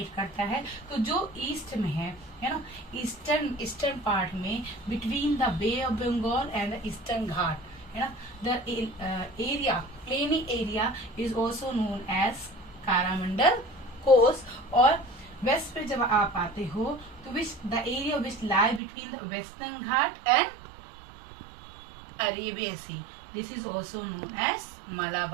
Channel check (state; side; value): drops out; left; at 18.8 s